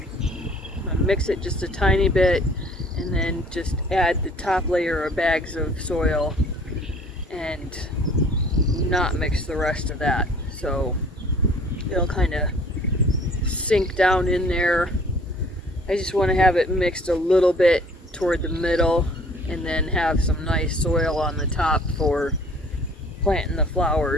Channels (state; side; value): normal; both; correlation 0.53